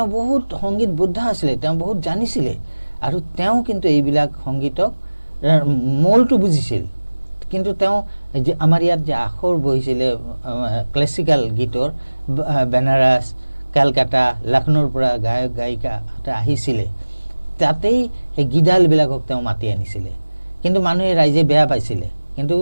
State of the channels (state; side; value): inverted; both; correlation -1.00